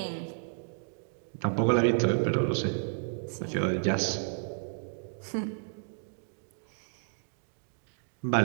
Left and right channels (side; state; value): left; silent; digital silence